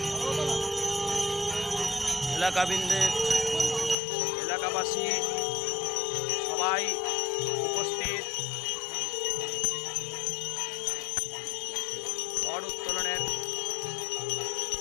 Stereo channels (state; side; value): drops out; right; at 4.0 s